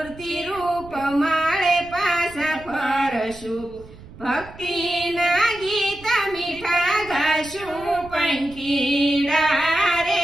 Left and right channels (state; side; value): noise; right; rumble, 19 dB below the sound